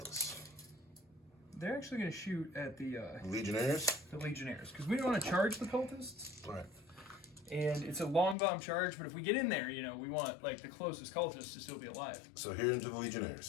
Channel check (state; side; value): drops out; right; at 8.3 s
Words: They're actually going to shoot at the Legionnaires? Legionnaires, because we don't want to charge the cultists. All right. And it's a long bomb charge, but if we get in there, you know, we want like the closest cultist to still be alive. So here into the